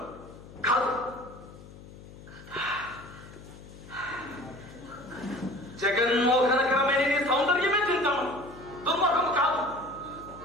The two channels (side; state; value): left; noise; hum, 17 dB below the sound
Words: కాదు. జగన్మోహనకరమైన నీ సౌందర్యమే చింతామణి, దుర్మోహము కాదు.